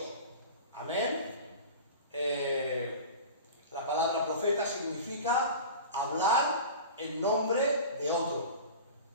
Amén. La palabra profeta significa hablar en nombre de otro.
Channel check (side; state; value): both; inverted; correlation -0.35